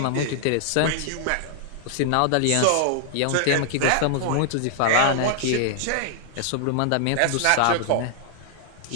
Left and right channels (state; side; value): different; both; correlation -0.01